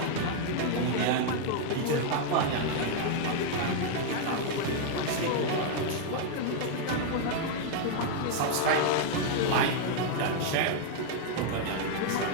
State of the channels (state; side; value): different; both; correlation 0.00